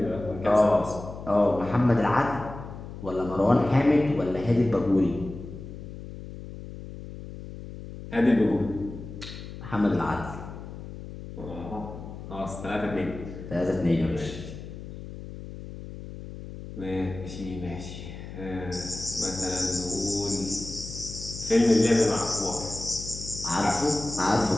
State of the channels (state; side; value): noise; left; hum, 11 dB below the sound